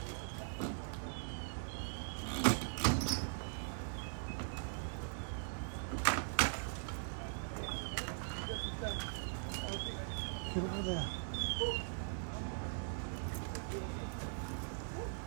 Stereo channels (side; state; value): left; silent; digital silence